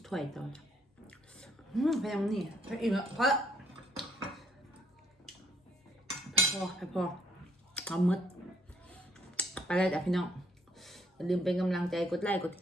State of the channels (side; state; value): both; normal; correlation 0.68